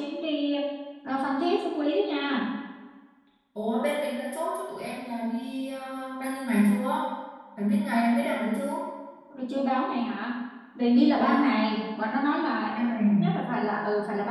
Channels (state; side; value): identical; both; correlation 1.00